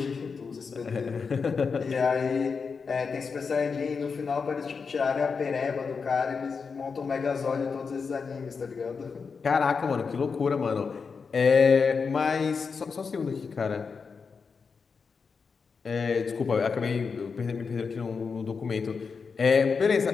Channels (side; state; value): right; quieter; 5.3 dB